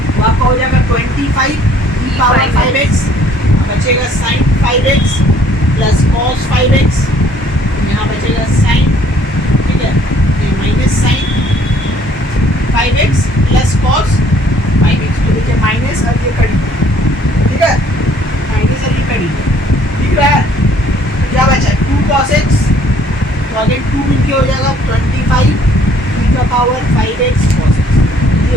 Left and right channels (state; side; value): normal; both; correlation 0.60